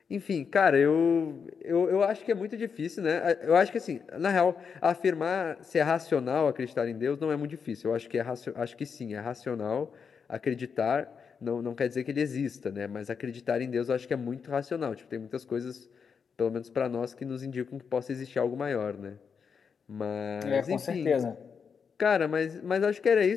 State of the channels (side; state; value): right; quieter; 6.2 dB